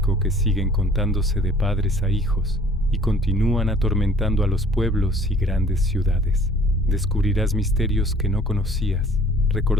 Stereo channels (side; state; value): both; normal; correlation 0.53